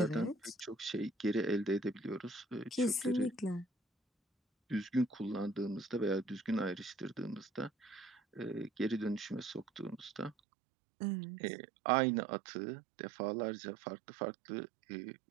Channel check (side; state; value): left; drops out; at 10.4 s